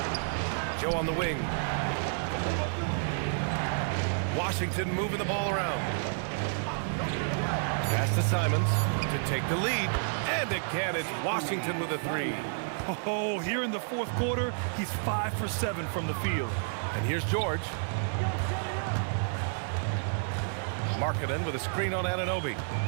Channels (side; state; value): left; silent; digital silence